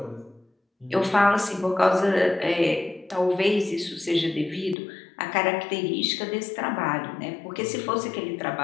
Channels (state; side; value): drops out; right; at 4.8 s